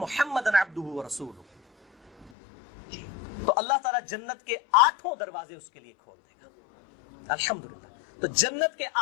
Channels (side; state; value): right; drops out; at 2.3 s